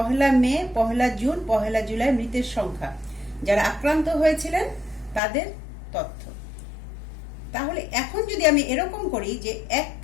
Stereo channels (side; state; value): right; drops out; at 5.2 s